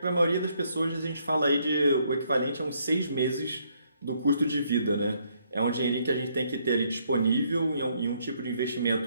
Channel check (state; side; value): inverted; both; correlation -0.71